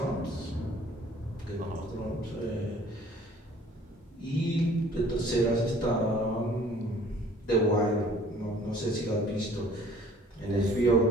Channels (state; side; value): normal; both; correlation 0.53